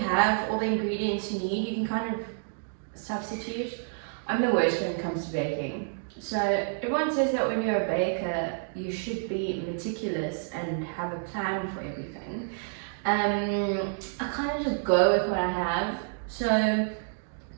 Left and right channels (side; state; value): left; silent; digital silence